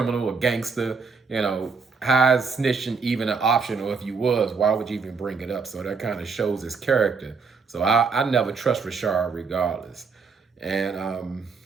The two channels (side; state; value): left; quieter; 5.0 dB